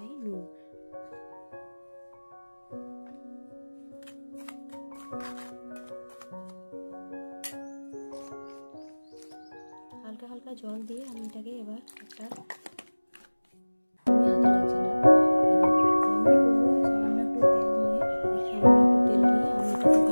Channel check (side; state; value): both; inverted; correlation -1.00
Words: নুন। হালকা হালকা জল দিয়ে আমি এটাকে এবার একটা